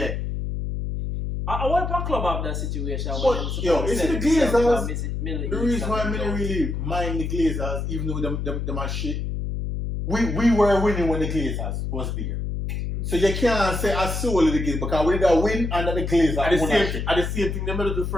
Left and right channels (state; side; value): noise; left; hum, 3 dB below the sound